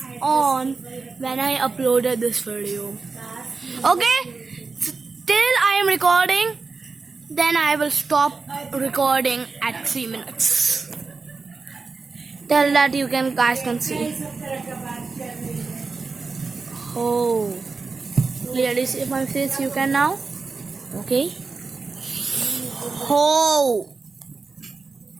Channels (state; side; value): quieter; left; 4.3 dB